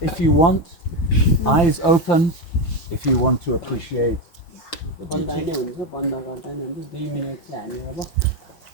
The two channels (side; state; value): right; late; 5.8 ms